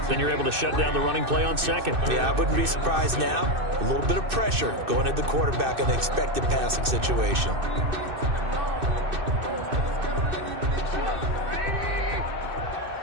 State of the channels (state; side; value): late; left; 2.6 ms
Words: Then you're able to shut down the running play on 2nd. Yeah, I wouldn't be surprised now. A little bit of pressure going at the quarterback in the expected passing situation.